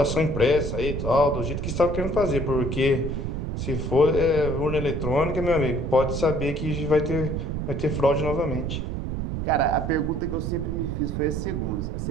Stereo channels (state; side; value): noise; right; rumble, 3 dB below the sound